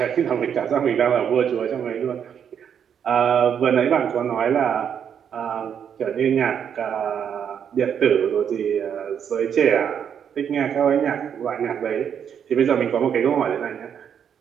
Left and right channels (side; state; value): left; quieter; 8.2 dB